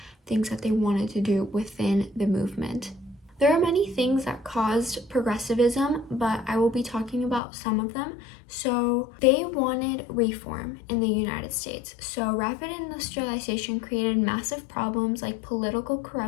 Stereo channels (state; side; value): drops out; right; at 7.4 s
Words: things that they wanted to do within the movement. There are many things that caused progressivism, but I will be talking about some of them. So they wanted reform in the United States. So rapid industrialization created massive problems like political